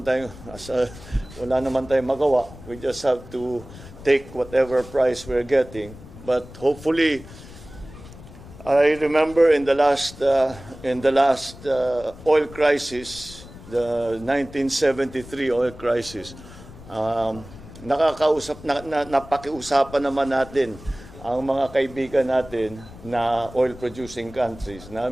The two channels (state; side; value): noise; left; rumble, 17 dB below the sound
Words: tayong magawa. We just have to take whatever price we're getting. But hopefully, I remember in the last oil crisis, the 1973 oil crisis, napakiusapan naman natin ang mga kaibigan natin na oil-producing countries na